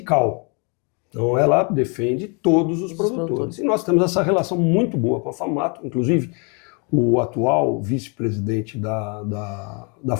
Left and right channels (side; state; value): right; quieter; 34.5 dB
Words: Então ela defende todos os produtores. E nós temos essa relação muito boa com a FAMATO, inclusive o atual vice-presidente da